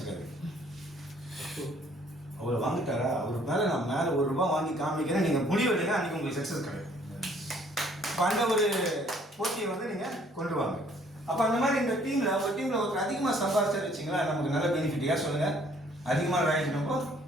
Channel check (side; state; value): both; normal; correlation 0.61